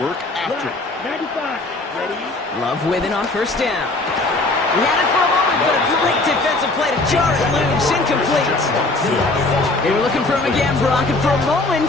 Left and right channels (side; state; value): right; quieter; 3.1 dB